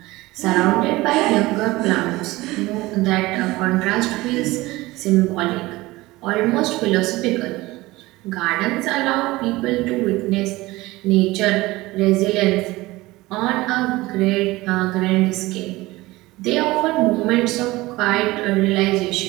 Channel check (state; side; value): quieter; left; 19.7 dB